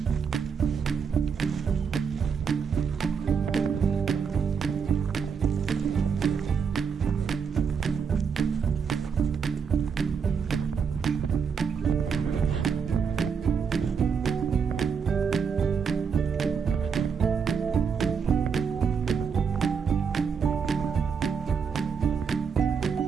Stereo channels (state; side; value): quieter; left; 6.3 dB